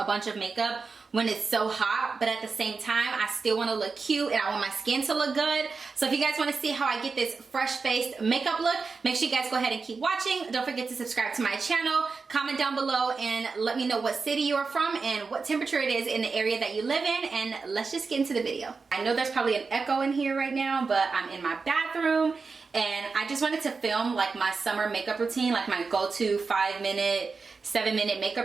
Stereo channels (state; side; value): quieter; left; 4.6 dB